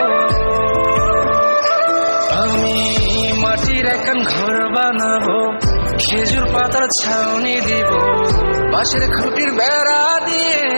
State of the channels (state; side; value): inverted; both; correlation -1.00